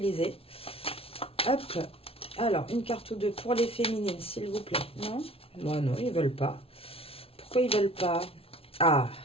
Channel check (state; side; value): late; right; 0.27 ms